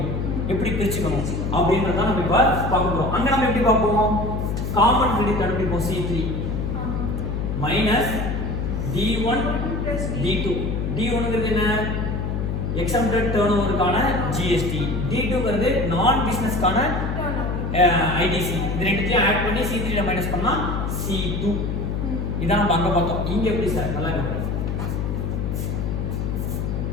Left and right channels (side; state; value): left; noise; hum, 2 dB below the sound